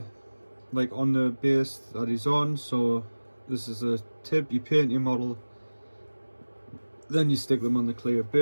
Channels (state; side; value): inverted; both; correlation -1.00